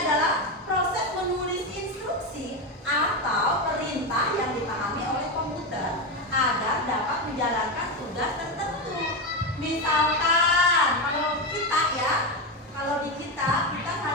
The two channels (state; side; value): normal; both; correlation 0.12